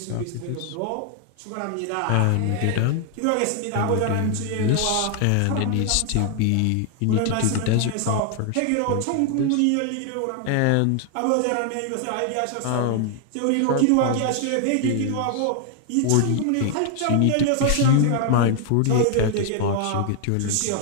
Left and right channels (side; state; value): both; different; correlation 0.00